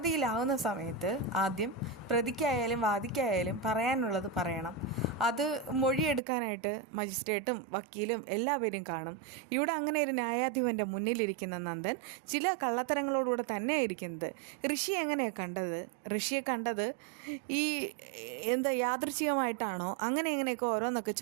സമയത്ത് ആദ്യം പ്രതിക്കായാലും വാദിക്കായാലും പറയാനുള്ളത് പറയണം. അത് മൊഴിയെടുക്കാനായിട്ട് മജിസ്ട്രേറ്റും വക്കീലും എല്ലാവരും കാണും. ഇവിടെ അങ്ങനെ ഒരു ന്യായാധിപൻ്റെ മുന്നിലിരിക്കുന്ന നന്ദൻ ചില കള്ളത്തരങ്ങളോടുകൂടെ തന്നെയാണ് ഇരിക്കുന്നത്. ഋഷി എങ്ങനെയാണ് കണ്ടത്? ഋഷിയെ കണ്ടത് ഈ യാദൃച്ഛികമായിട്ടാണോ? എങ്ങനെയൊക്കെ ഓരോന്നൊക്കെ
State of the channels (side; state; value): left; drops out; at 6.2 s